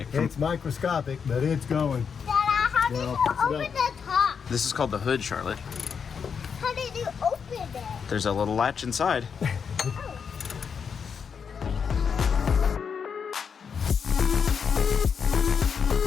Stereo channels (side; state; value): right; quieter; 6.5 dB